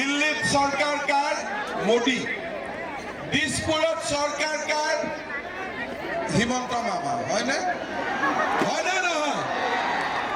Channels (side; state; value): both; identical; correlation 1.00